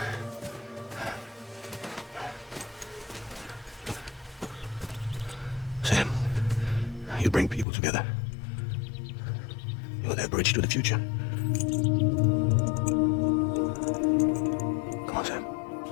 You bring people together. You're their bridge to the future. Come on, Sam.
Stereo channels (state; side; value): drops out; right; at 7.7 s